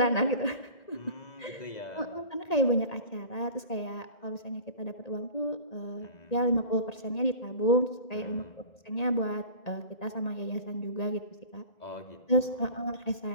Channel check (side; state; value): right; late; 1.8 ms